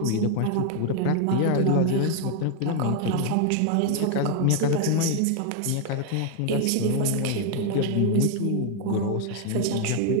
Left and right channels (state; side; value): different; both; correlation 0.00